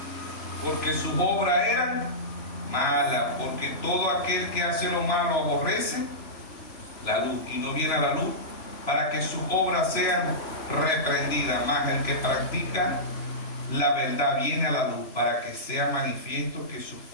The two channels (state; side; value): late; right; 3.0 ms